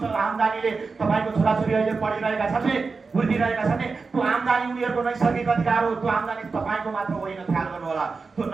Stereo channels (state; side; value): quieter; left; 4.5 dB